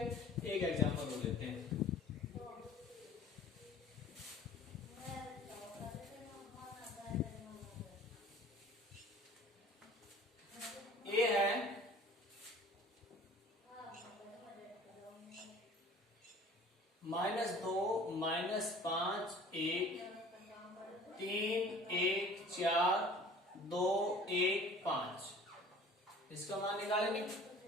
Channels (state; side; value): normal; both; correlation 0.47